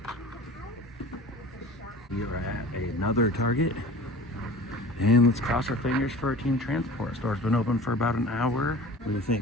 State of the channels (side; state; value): both; normal; correlation 0.41